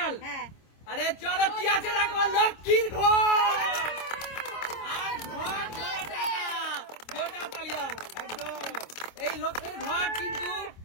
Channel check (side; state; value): right; late; 26 ms